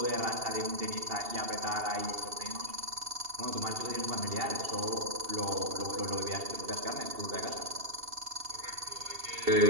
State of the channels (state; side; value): late; left; 2.7 ms